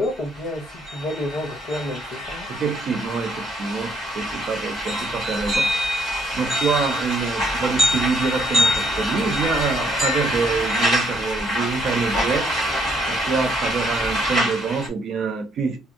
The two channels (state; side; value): normal; both; correlation 0.68